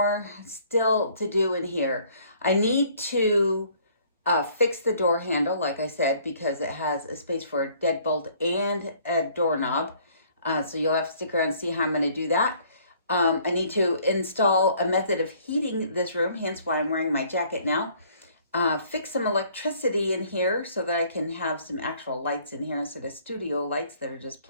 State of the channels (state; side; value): inverted; both; correlation -0.59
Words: still to do in here. I need to fix the door handle, like I said, because it has a space for a deadbolt and a doorknob. So you'll have to stick around and see how I'm going to do that. I need to install a method of heating this room, hence why I'm wearing my jacket now. Fix some electricity in here so that I can have some actual lights in here instead of studio lights that are just